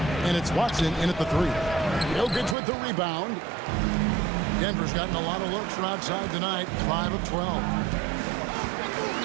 And it's Watson in at the 3. Jokic with the rebound. Denver's gotten a lot of looks from outside tonight, 5 of 12.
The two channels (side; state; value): left; drops out; at 2.6 s